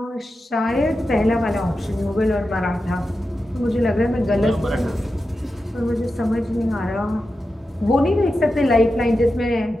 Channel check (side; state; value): both; normal; correlation 0.91